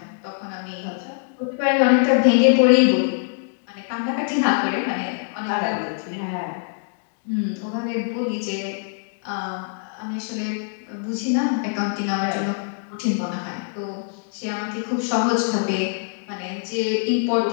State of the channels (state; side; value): silent; right; digital silence